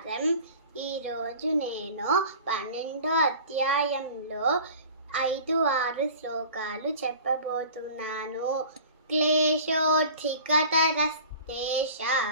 ఈరోజు నేను 12వ అధ్యాయంలో 5-6 శ్లోకాలు చెప్పబోతున్నాను.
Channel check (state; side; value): inverted; both; correlation -0.42